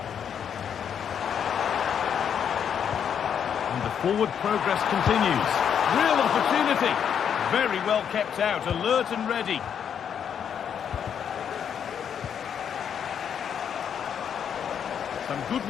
And the forward progress continues. Real opportunity. Very well kept out, alert and ready. Some good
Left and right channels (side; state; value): right; quieter; 8.2 dB